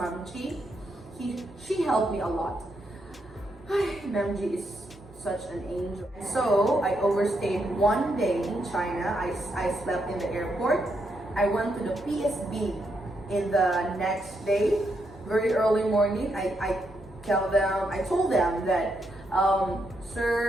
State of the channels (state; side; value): normal; both; correlation 0.79